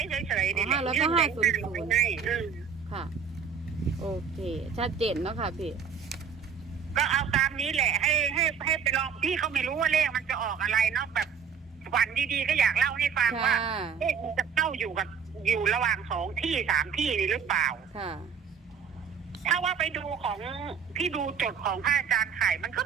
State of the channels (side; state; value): left; quieter; 6.7 dB